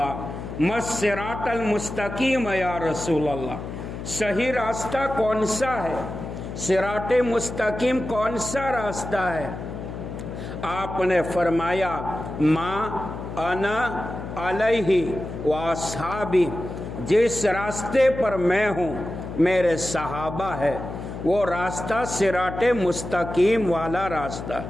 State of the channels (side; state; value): left; noise; hum, 8 dB below the sound